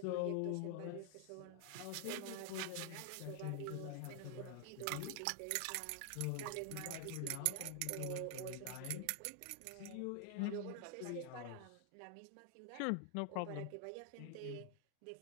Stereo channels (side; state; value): both; different; correlation 0.00